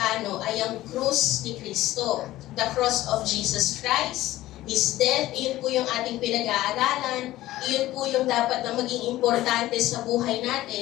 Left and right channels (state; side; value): quieter; right; 15.8 dB